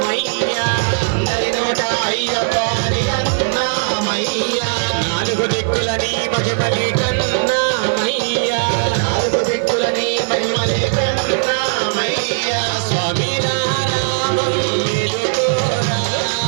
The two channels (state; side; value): silent; left; digital silence